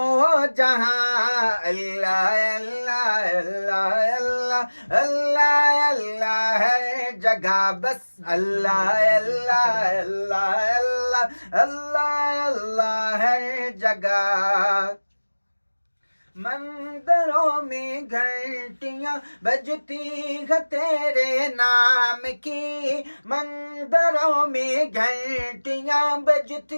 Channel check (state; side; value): inverted; both; correlation -1.00